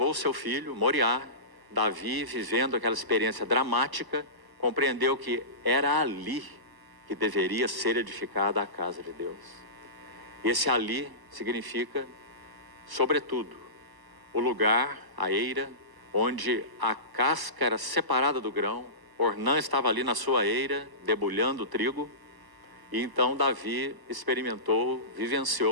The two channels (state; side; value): late; left; 1.1 ms